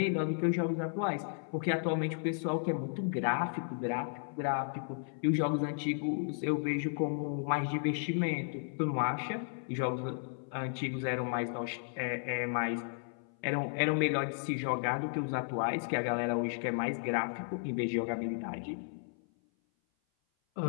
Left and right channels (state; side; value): silent; right; 55 dB below the other